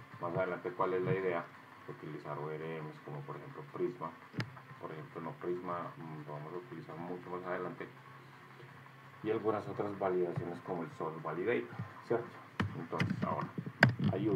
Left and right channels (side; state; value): both; identical; correlation 1.00